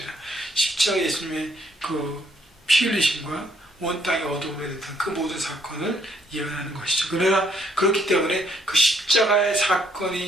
십자가 예수님의 그 피 흘리심과 온 땅이 어두움에 됐던 그 모든 사건을 예언하는 것이죠. 그러나 그렇기 때문에 그 십자가의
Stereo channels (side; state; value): both; normal; correlation 0.69